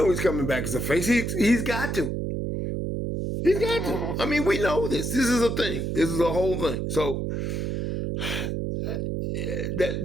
he's coming back as a face. He's got to. He's got to. I mean, we know this. This is a thing. This is a whole thing. So,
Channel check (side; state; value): right; noise; hum, 2 dB below the sound